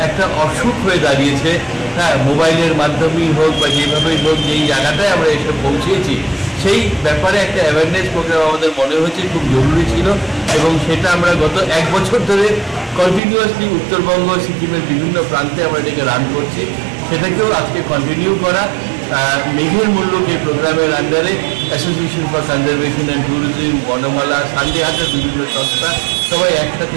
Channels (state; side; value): drops out; left; at 13.2 s